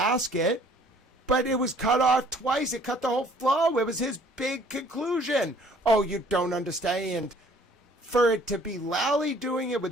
it, but it was cut off twice. It cut the whole flow. It was his big conclusion. Oh, you don't understand. For it to be Lally doing it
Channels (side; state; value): both; normal; correlation 0.57